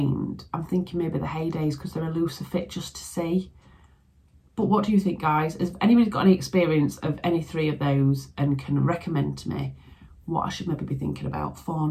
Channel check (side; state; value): both; identical; correlation 1.00